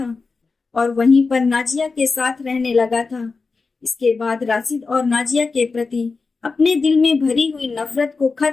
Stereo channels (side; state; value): right; quieter; 4.3 dB